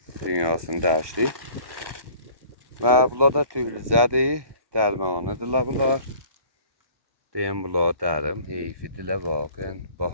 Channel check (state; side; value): late; left; 1.1 ms